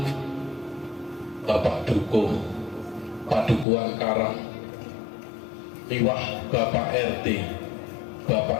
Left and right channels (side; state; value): right; drops out; at 3.7 s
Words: Bapak Dukuh Padukuhan Karang miwah Bapak RT,